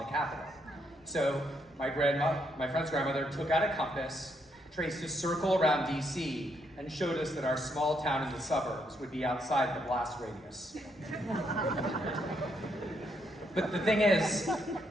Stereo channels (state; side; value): normal; both; correlation 0.75